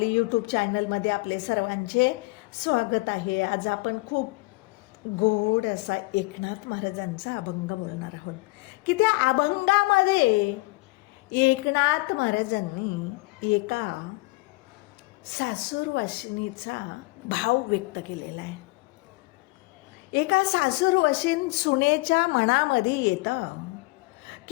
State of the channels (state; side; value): quieter; right; 24.5 dB